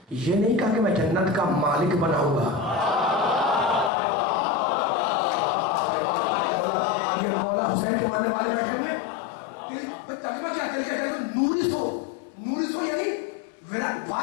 یہ نہیں کہا کہ میں جنت کا مالک بناؤں گا. یہ مولا حسین کے ماننے والے بیٹھے ہوئے, ترجمہ کیا تلک الجنت نورث ہو یعنی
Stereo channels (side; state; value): right; drops out; at 3.9 s